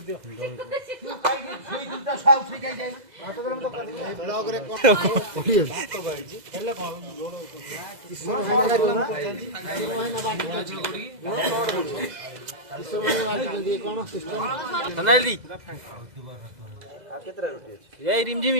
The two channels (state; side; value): late; left; 2.0 ms